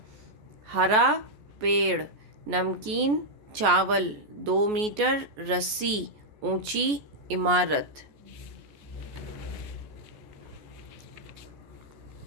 हरा पेड़, नमकीन चावल, 2 मीटर रस्सी, ऊंची इमारत।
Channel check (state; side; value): late; left; 14 ms